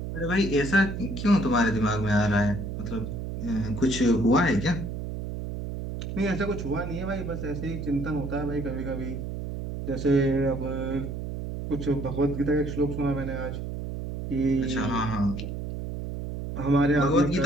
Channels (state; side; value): noise; right; hum, 6 dB below the sound